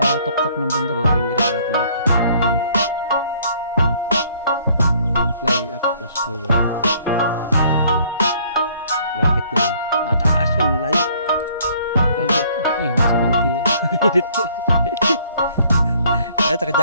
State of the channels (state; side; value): inverted; both; correlation -0.61